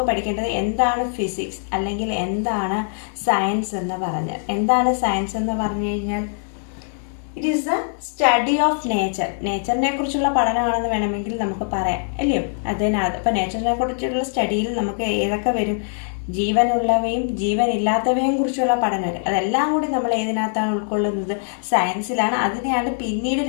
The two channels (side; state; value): right; silent; digital silence